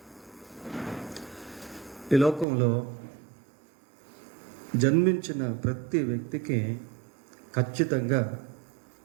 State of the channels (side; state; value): left; drops out; at 2.5 s